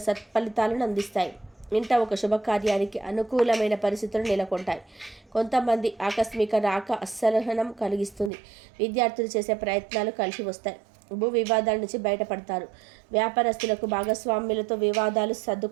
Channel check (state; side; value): drops out; left; at 8.3 s